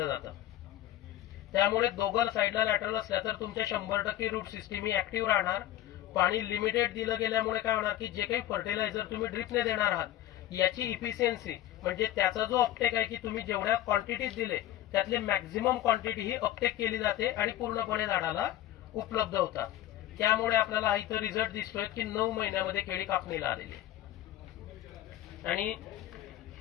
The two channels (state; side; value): quieter; right; 13.6 dB